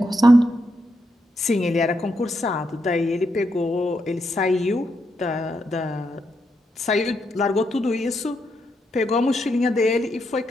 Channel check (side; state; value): both; normal; correlation 0.81